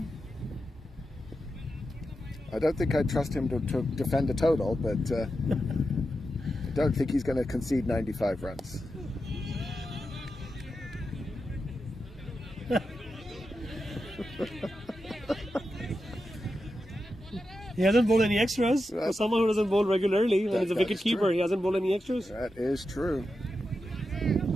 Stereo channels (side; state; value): both; normal; correlation 0.89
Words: I don't think I'd trust him to defend a total, but I don't think he's going to concede 95 runs. He hasn't bowled any extras. For someone who doesn't bowl regularly, and he's a wicket keeper, he hasn't bowled any extras. That is true.